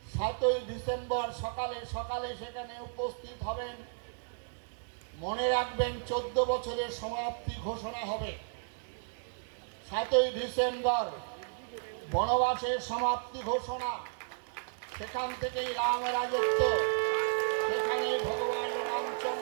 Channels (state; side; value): silent; left; digital silence